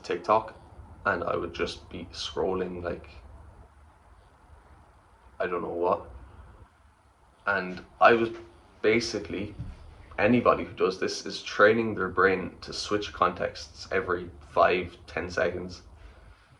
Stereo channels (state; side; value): identical; both; correlation 1.00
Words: TikTok, and I would just be scrolling like I don't know what. And I was basically, anybody who does this is training their brain to switch contexts every 5-10 seconds.